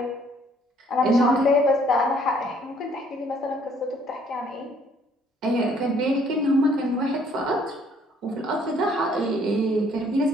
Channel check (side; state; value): both; normal; correlation 0.62